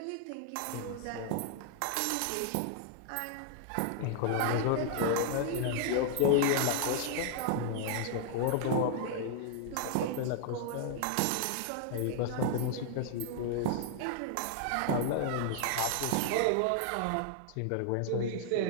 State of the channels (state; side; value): different; both; correlation 0.00